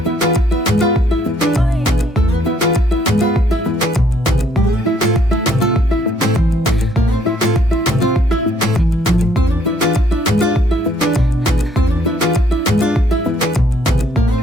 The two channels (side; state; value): both; normal; correlation 0.66